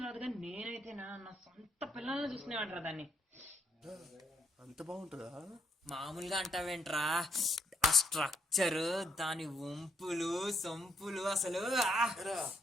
రాదు కానీ నేనైతే నా సొంత పిల్లల్ని చూసుకునేవాడు దాన్ని. అంత బాగుంటుందా? మామూలుగా అంటావేంట్రా, ఆ స్ట్రక్చర్, దాని వంపులు సొంపులు అసలు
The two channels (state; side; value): normal; both; correlation 0.73